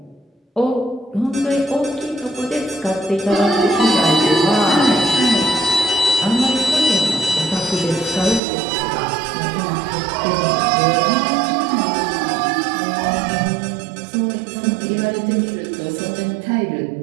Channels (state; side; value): drops out; left; at 8.4 s